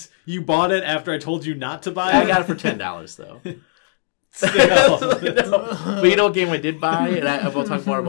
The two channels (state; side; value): silent; right; digital silence